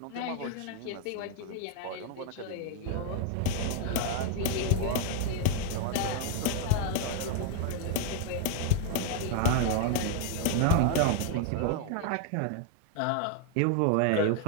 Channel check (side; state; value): both; different; correlation 0.00